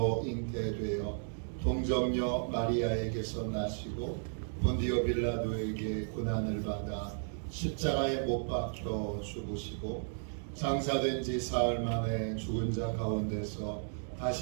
잉태되어 동정녀 마리아에게서 나시고 본디오 빌라도에게 고난을 받아 십자가에 못 박혀 죽으시고 장사된 지 사흘 만에 죽은 자 가운데서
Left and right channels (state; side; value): silent; left; digital silence